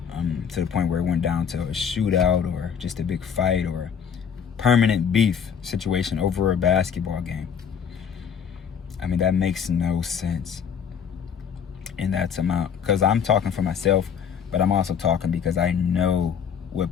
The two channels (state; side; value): quieter; right; 7.4 dB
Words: to the point where it went down to a shootout or just a big fight or permanent beef situation over a basketball game. I mean, that makes no sense in that amount, because I'm talking for myself, but I'm also talking because I know